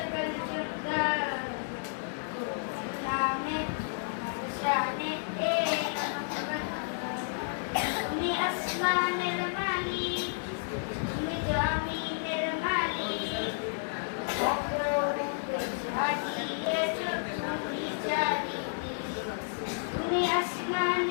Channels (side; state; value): right; silent; digital silence